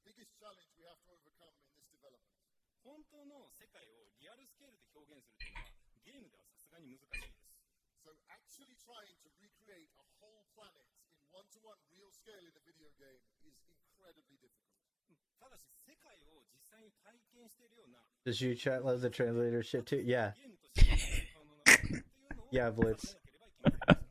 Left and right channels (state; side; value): identical; both; correlation 1.00